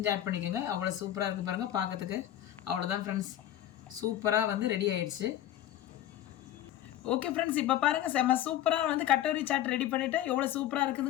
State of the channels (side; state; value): right; quieter; 12.5 dB